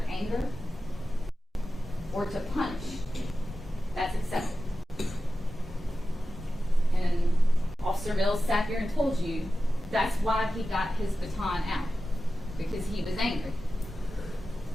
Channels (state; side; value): normal; both; correlation 0.93